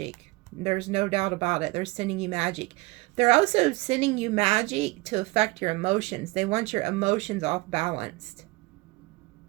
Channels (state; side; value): quieter; left; 23.2 dB